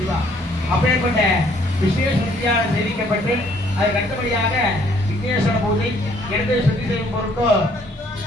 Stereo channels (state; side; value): normal; both; correlation 0.63